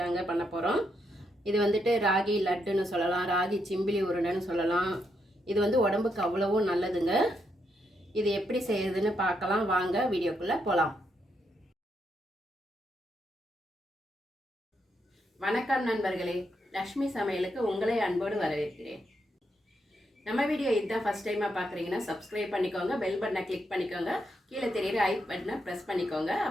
பண்ண போகிறோம். இது வந்துட்டு ராகி லட்டுன்னு சொல்லலாம், ராகி சிம்பிளி உருண்டைன்னு சொல்லலாம். இது வந்து உடம்புக்கு அவ்வளவும் நல்லதுங்க. இது எப்படி செய்யறதுன்னு பார்க்கலாம் வாங்க, வீடியோக்குள்ளே போகலாம். வணக்கம் நண்பர்களே, லக்ஷ்மி சமையலுக்கு உங்களை அன்போடு வரவேற்கிறேன். நம்ம வீடியோ இதுதான் ஃபஸ்ட் டைமாக பார்க்குறீங்கன்னா சப்ஸ்கிரைப் பண்ணிக்கோங்க, பெல் பட்டனை கிளிக் பண்ணிக்கோங்க, கீழே தெரியுற ஐ பட்டனை ப்ரெஸ் பண்ணிக்கோங்க.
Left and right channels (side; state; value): both; normal; correlation 0.80